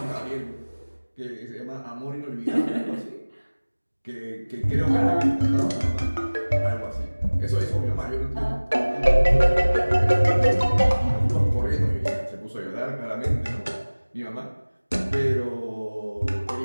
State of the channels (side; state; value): both; inverted; correlation -1.00